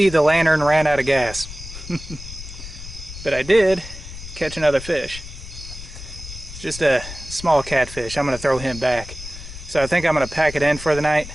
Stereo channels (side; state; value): left; noise; rumble, 13 dB below the sound